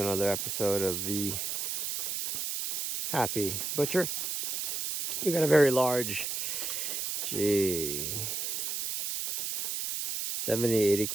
episode of the Happy Butcher. We got a very large, 70, 80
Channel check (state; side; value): noise; right; hiss, 2 dB below the sound